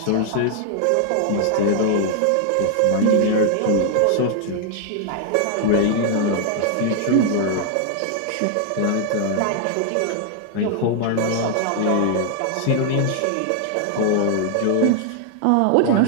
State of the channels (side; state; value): both; different; correlation 0.00